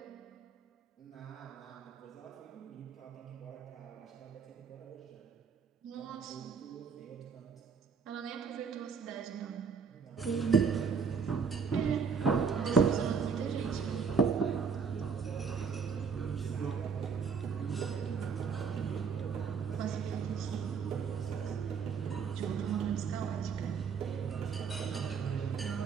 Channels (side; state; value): left; quieter; 6.0 dB